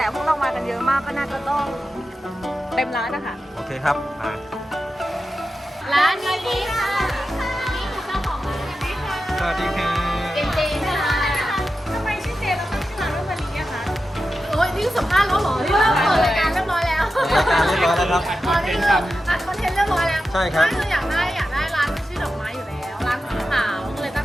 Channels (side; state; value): both; normal; correlation 0.91